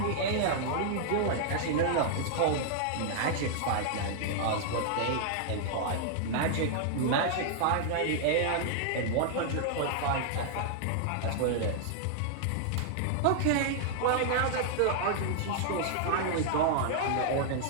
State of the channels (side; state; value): both; different; correlation -0.01